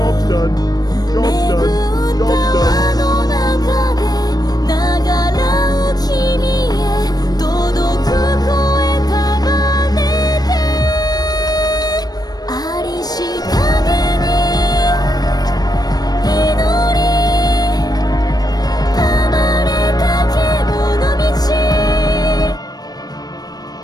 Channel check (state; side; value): late; right; 0.19 ms